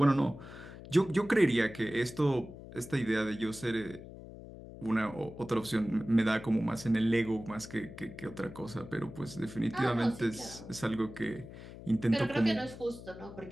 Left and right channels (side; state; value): left; noise; hum, 14 dB below the sound